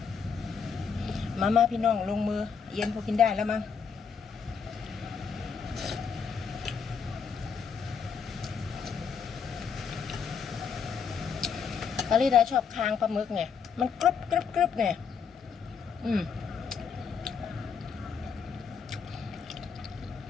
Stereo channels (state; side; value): quieter; right; 6.3 dB